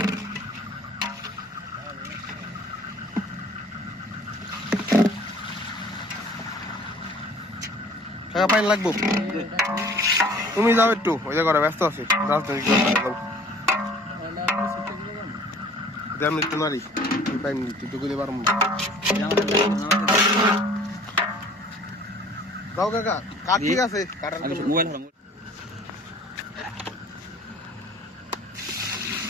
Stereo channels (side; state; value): both; normal; correlation 0.51